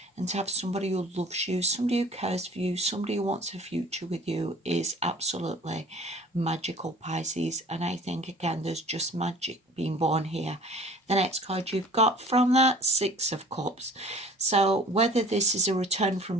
and to have somebody who loves you, somebody who cares for you, somebody who wants a future with you is absolutely magical, Pisces. And I think, again, there's just magic being born here. The next card you've got from that, Six of Cups. So whether this is a return from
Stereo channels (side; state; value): both; normal; correlation 0.48